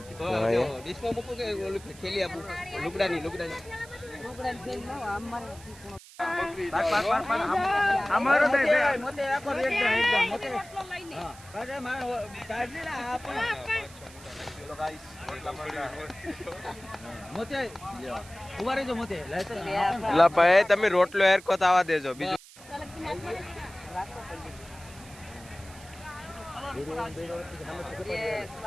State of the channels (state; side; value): noise; right; hiss, 20 dB below the sound